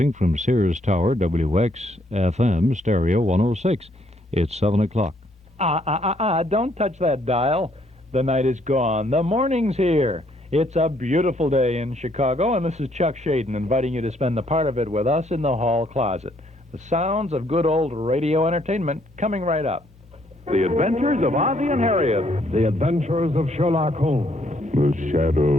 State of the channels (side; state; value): both; normal; correlation 0.68